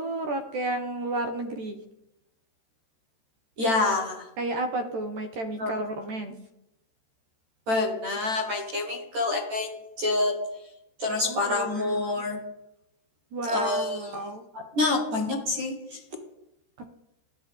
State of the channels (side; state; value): left; late; 13 ms